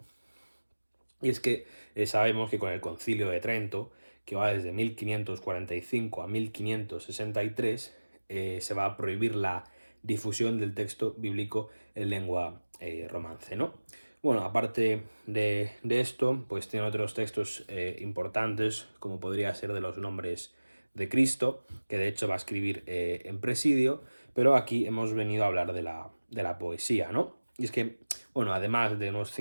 Y es que sabemos que con el Concilio de Trento, que va desde 1545 a 1563, se va a prohibir la difusión del texto bíblico en lengua romance, ¿no? Bueno, aparte de esto, pues tiene otros textos importantes, como podría ser de los nombres de Cristo, que de hecho va a escribir en Presidio, pero aquí hemos venido a hablar de la poesía, ¿no? Y es que, bueno, además de unos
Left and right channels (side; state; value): both; inverted; correlation -1.00